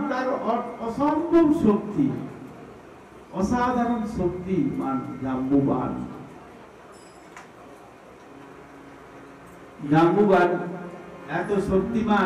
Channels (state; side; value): identical; both; correlation 1.00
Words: তার অসম্ভব শক্তি, অসাধারণ শক্তিমান জাম্বুবান। জাম্বুবান এত